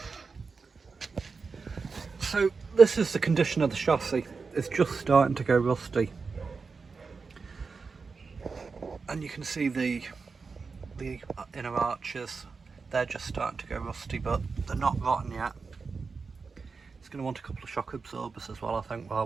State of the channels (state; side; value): quieter; left; 4.7 dB